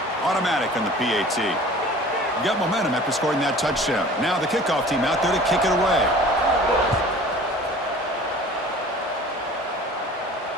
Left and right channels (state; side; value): normal; both; correlation 0.45